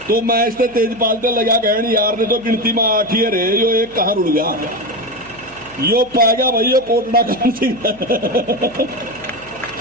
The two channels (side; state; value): right; noise; hum, 25 dB below the sound